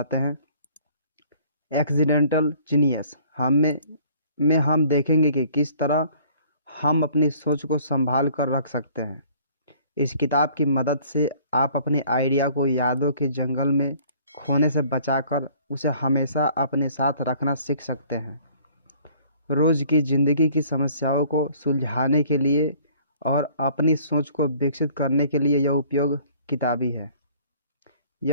हैं। एक्सीडेंटल जीनियस में हम देखेंगे कि किस तरह हम अपनी सोच को संभाल कर रख सकते हैं। इस किताब की मदद से आप अपने आइडिया को यादों के जंगल में खोने से बचाकर उसे हमेशा अपने साथ रखना सीख सकते हैं। रोज़ की ज़िंदगी की समस्याओं को सुलझाने के लिए और अपनी सोच को विकसित करने के लिए यह किताबी है।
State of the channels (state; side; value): inverted; both; correlation -0.55